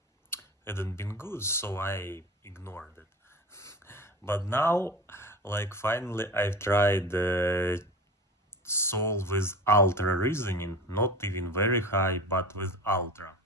hadn't been good, so I ignored it. But now, like finally, I've tried Sol with ultra reasoning, not even very high, but with ultra.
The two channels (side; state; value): both; normal; correlation 0.33